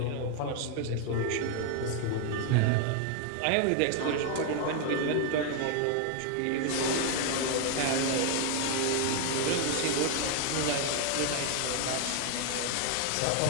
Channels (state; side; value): different; both; correlation 0.00